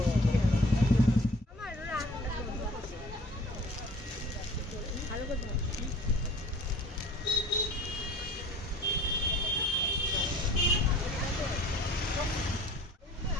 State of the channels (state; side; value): normal; both; correlation 0.49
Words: আমার ভালো করে ধরো।